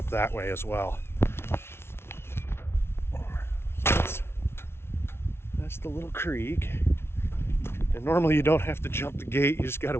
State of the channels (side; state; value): right; late; 0.12 ms